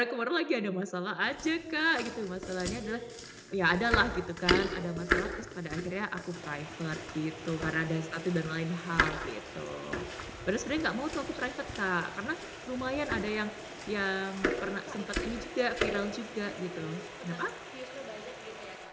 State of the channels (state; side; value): identical; both; correlation 1.00